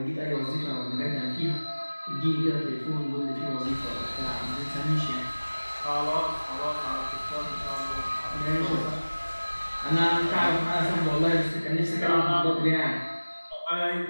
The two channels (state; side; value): inverted; both; correlation -1.00